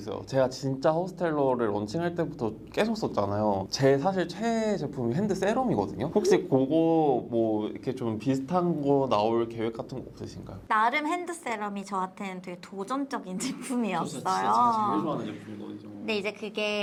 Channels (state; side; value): identical; both; correlation 1.00